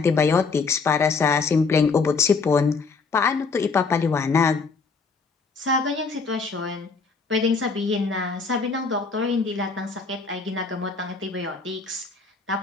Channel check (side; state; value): right; quieter; 4.6 dB